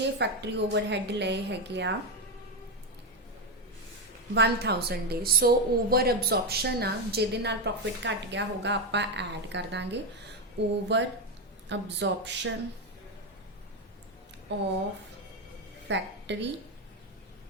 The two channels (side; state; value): both; normal; correlation 0.08